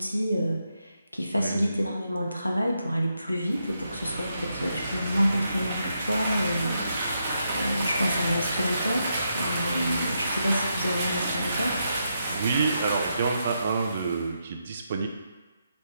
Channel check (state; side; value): inverted; both; correlation -0.82